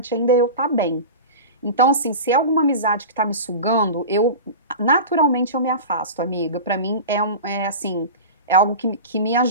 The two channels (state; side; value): inverted; both; correlation -0.30